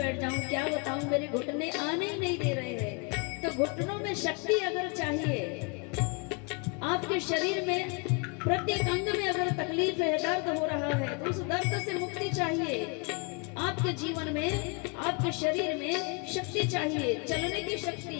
जाऊं क्या बताऊं मेरे घुटने आने ही नहीं दे रहे हैं तो घुटनों में शक्ति अगर चाहिए आपके शरीर में प्रत्येक अंग में अगर तकलीफ है दर्द हो रहा है तो उस दर्द से मुक्ति चाहिए आपके जीवन में आपके शरीर में शक्ति चाहिए चलने की शक्ति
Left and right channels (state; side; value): quieter; right; 32.7 dB